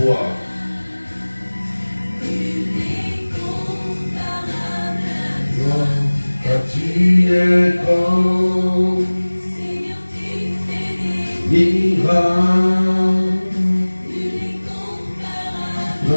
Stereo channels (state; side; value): inverted; both; correlation -1.00